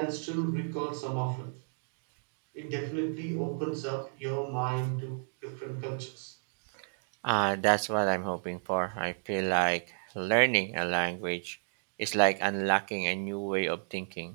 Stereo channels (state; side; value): silent; left; digital silence